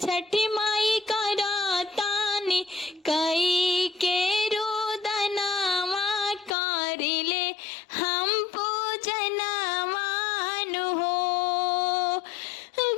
छठी माई करातानी कई के रोदनावा करिले हम पूजनवानु हो।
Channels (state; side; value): drops out; right; at 6.6 s